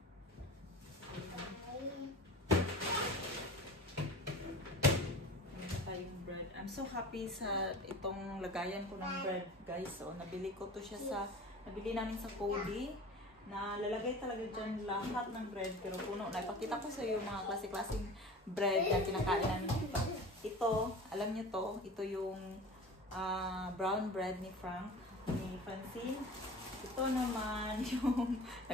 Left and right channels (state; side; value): normal; both; correlation 0.38